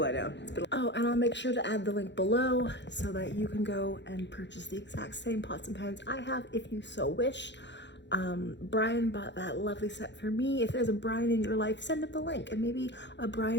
down. Oh, and I'll make sure to add the link below so that you can go and purchase the exact same pots and pans I have if you so wish. Brian bought that lovely set for me. If there's a Brian in your life, send him the link and maybe a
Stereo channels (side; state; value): right; late; 0.52 ms